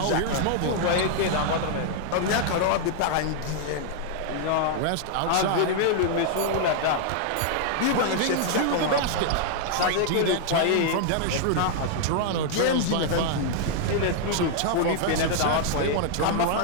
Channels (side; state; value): both; different; correlation 0.00